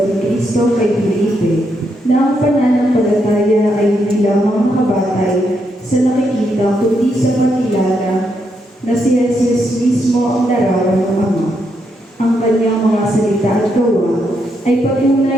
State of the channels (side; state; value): both; normal; correlation 0.79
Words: ni Kristo kay Felipe na ang pananampalataya ay hindi lamang nakabatay sa nakikita kundi sa pagkilala na si Jesus mismo ang larawan ng Ama. Ang kanyang mga salita at gawa ay